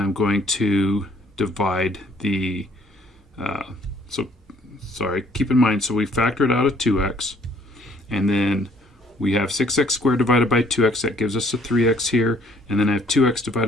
I'm going to divide the, keep in mind, so we factored out a 2x, and then we have 6x squared divided by 2x, that gives us a 3x here, and then I have 2x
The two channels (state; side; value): normal; both; correlation 0.62